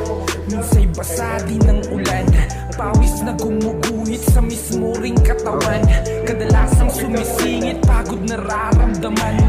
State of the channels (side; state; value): both; identical; correlation 1.00